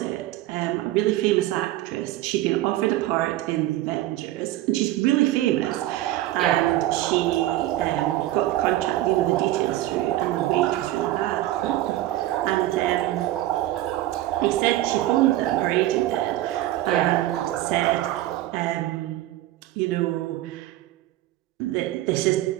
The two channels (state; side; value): quieter; left; 15.3 dB